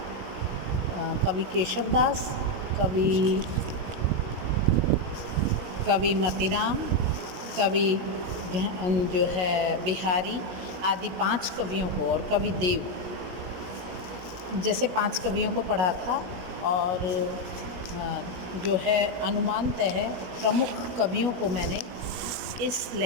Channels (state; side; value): late; left; 17 ms